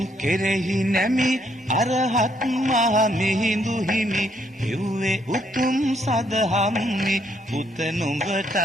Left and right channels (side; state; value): both; normal; correlation 0.72